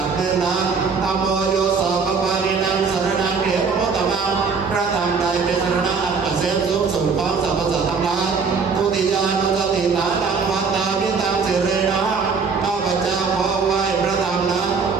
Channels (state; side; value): quieter; left; 5.2 dB